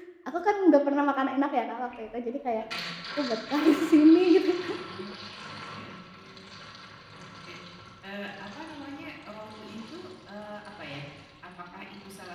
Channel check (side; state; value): both; identical; correlation 1.00